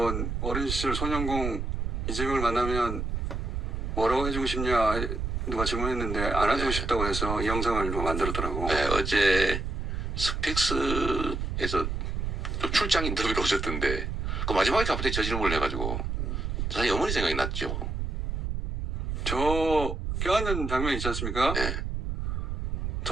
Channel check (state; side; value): noise; right; rumble, 2 dB below the sound